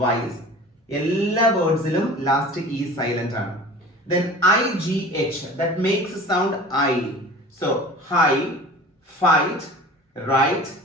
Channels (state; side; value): normal; both; correlation 0.41